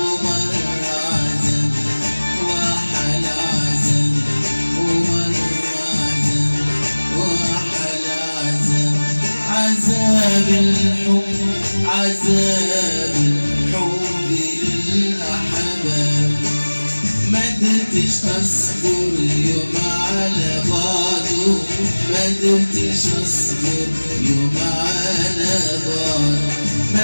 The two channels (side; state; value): both; inverted; correlation -1.00